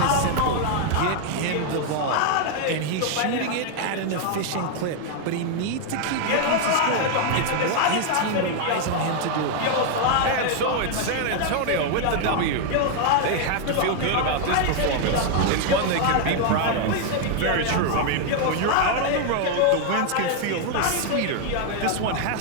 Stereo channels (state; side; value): different; both; correlation 0.00